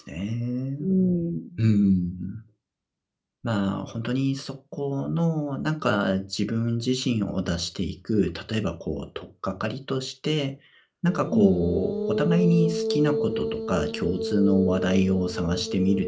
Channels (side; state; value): both; identical; correlation 1.00